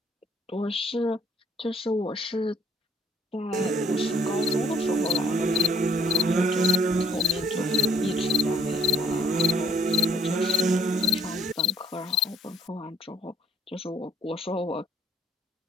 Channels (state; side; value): normal; both; correlation 0.62